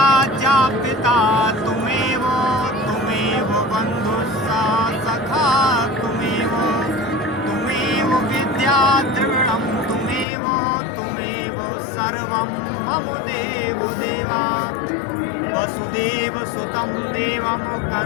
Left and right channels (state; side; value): drops out; right; at 10.2 s